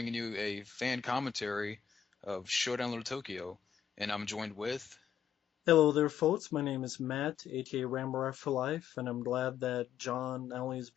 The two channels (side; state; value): right; quieter; 8.6 dB